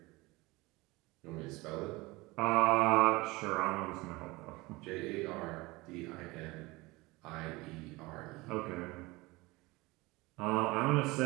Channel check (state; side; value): quieter; left; 22.2 dB